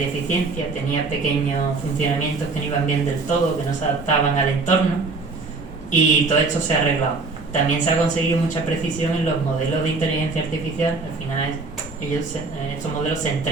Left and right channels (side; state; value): left; quieter; 4.0 dB